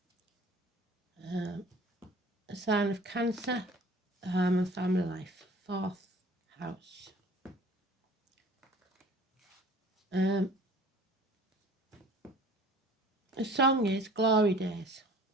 A sign of Cancer, home and family life, 4th house. The song is Glory Days.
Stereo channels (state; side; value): normal; both; correlation 0.48